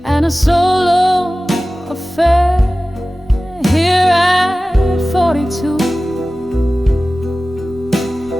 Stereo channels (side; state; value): both; normal; correlation 0.97